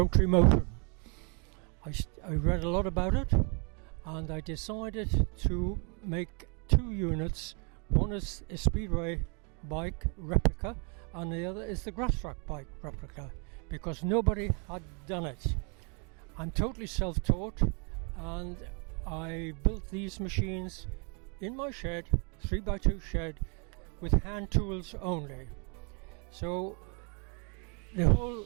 motion. I read a lot about it, and I decided to make two units. One is a speedway bike replica, and the other is the grass track bike replica, because nobody had done it. I'm totally self-taught, and I built these machines in my shed, 3x2 shed, with hand tools only. So the whole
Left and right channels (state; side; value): quieter; left; 35.9 dB